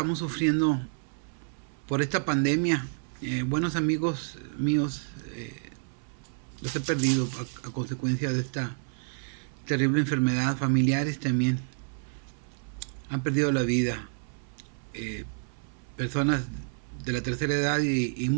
sufriendo por esta pandemia. Buenos amigos míos los he perdido a consecuencia de esta terrible enfermedad. Familiares también han perdido la vida. eh, Personas de la tercera edad y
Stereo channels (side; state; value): left; silent; 58 dB below the other